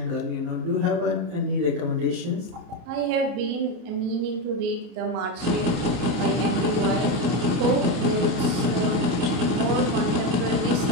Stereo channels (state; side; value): late; left; 33 ms